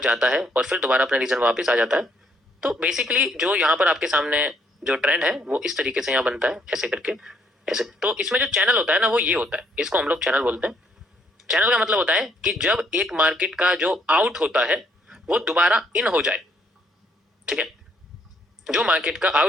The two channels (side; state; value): both; normal; correlation 0.69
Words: जाता है और फिर दोबारा अपने रीजन वापस आ जाता है। तो बेसिकली जो यहाँ पर आपके सामने जो ट्रेंड है वो इस तरीके से यहाँ बनता है, ऐसे करके ऐसे। तो इसमें जो चैनल होता है ना वो ये होता है, इसको हम लोग चैनल बोलते हैं। चैनल का मतलब होता है कि जब एक मार्केट का जो आउट होता है वो दोबारा इन हो जाए, ठीक है। जो मार्केट का